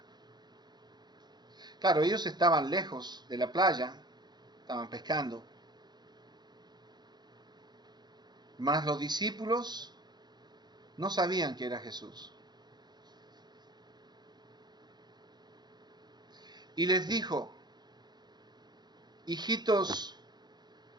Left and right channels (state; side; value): late; left; 0.21 ms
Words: Claro, ellos estaban lejos de la playa, estaban pescando. Mas los discípulos no sabían que era Jesús. Y les dijo, hijitos,